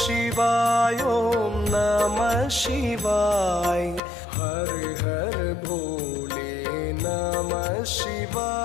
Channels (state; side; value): drops out; right; at 4.0 s